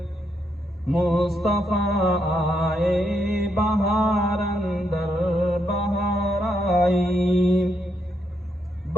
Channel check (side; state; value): both; normal; correlation 0.79